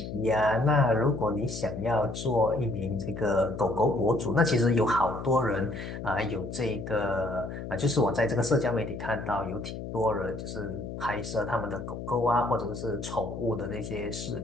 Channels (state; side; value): noise; left; hum, 8 dB below the sound